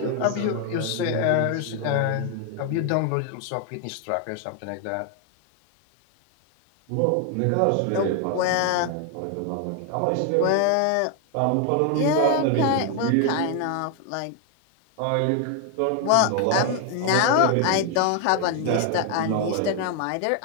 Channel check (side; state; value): both; different; correlation 0.01